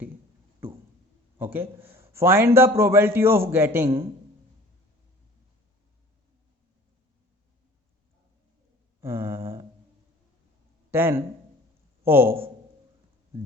Okay, find the probability of getting 10 of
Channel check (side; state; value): both; normal; correlation 0.47